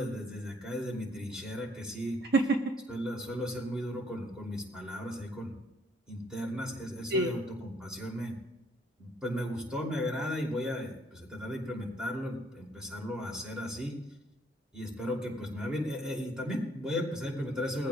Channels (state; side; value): normal; both; correlation 0.65